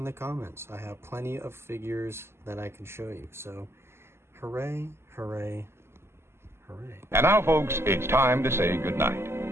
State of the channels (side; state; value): left; late; 0.12 ms